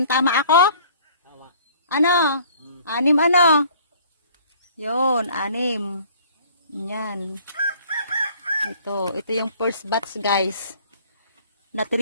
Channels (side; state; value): both; inverted; correlation -0.54